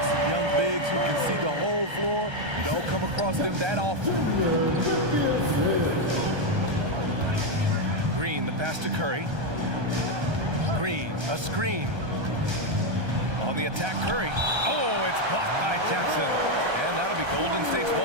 Young bigs who can see the whole floor. You don't come across them that often. Green, the pass to Curry. Green, a screen. On the attack, Curry. Oh, it's blocked by Jackson. And that'll be Golden State's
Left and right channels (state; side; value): late; left; 1.3 ms